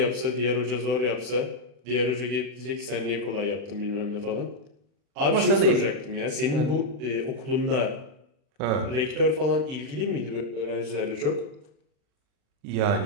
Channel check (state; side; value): late; left; 40 ms